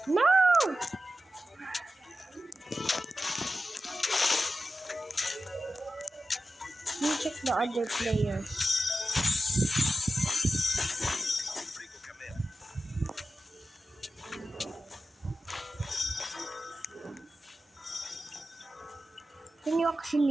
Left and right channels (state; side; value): normal; both; correlation 0.93